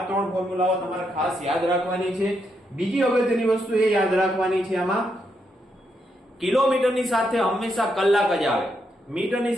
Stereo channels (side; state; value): both; normal; correlation 0.80